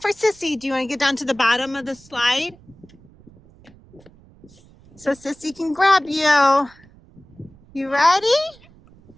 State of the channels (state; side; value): noise; right; rumble, 26 dB below the sound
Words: Sissy. Do you want to get down to the bottom of the slide? So Sissy can grab you. You ready?